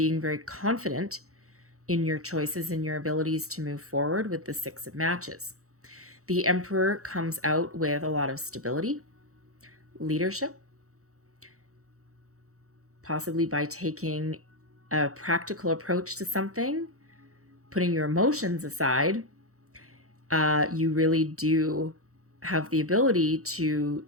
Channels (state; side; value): late; left; 0.65 ms